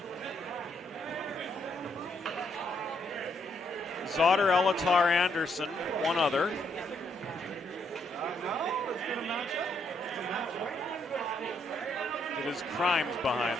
Zotter, Elatar, Anderson, one other. It is Crimes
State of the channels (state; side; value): normal; both; correlation 0.74